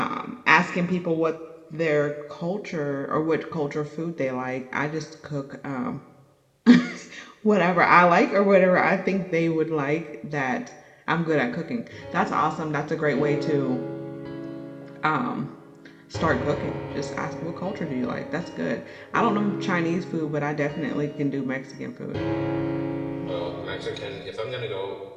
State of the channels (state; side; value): identical; both; correlation 1.00